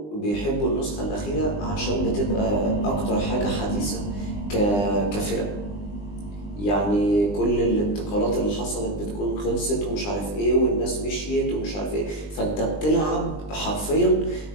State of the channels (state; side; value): late; right; 20 ms